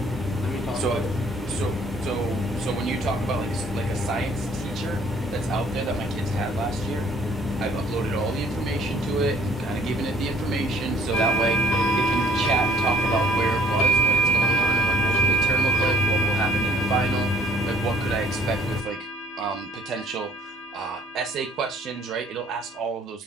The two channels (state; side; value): normal; both; correlation 0.57